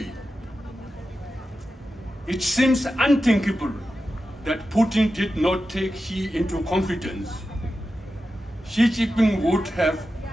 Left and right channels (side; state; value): both; normal; correlation 0.91